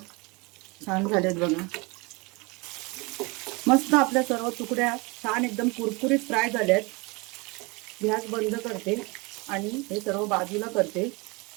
छान झालेत बघा. मस्त आपल्या सर्व तुकड्या छान एकदम कुरकुरीत फ्राय झाल्यात. गॅस बंद करते आणि हे सर्व बाजूला करते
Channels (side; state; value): left; quieter; 27.0 dB